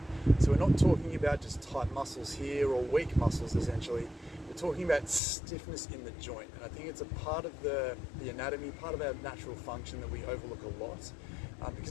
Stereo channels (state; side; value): drops out; right; at 5.2 s